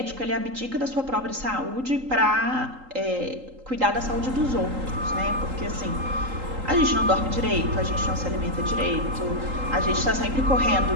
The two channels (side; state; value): left; late; 3.8 ms